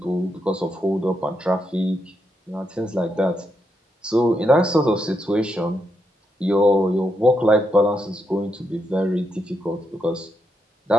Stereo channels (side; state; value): both; normal; correlation 0.81